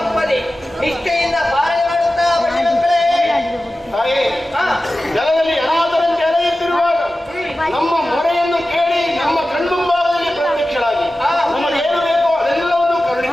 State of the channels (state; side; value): normal; both; correlation 0.95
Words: ನಿಷ್ಠೆಯಿಂದ ಪಾಲನೆ ಮಾಡುತ್ತಾ ಬನ್ನಿ ಮಕ್ಕಳೇ. ತಾಯೇ, ಜಲದಲ್ಲಿ ಅನಾಥರಂತೆ ಅಲೆಯುತ್ತಿರುವಾಗ ನಮ್ಮ ಮೊರೆಯನ್ನು ಕೇಳಿ ನಮ್ಮ ಕಣ್ಮುಂಭಾಗದಲ್ಲಿ ಪ್ರತ್ಯಕ್ಷರಾಗಿ ನಮಗೆ ಏನು ಬೇಕೋ ಅದೆಲ್ಲವನ್ನು